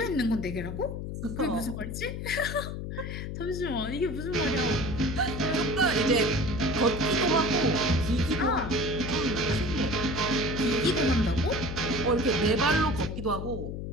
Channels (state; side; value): noise; left; hum, 6 dB below the sound